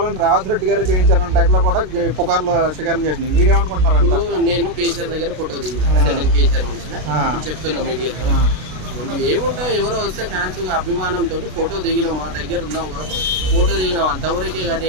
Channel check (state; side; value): late; left; 33 ms